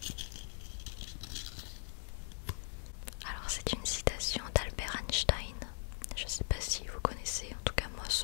Alors c'est une citation d'Albert Einstein. Je ne sais pas si vous connaissez, en tout cas moi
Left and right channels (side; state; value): right; silent; digital silence